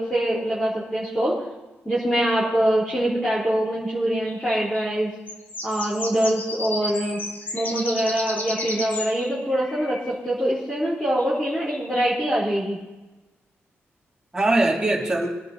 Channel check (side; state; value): both; normal; correlation 0.87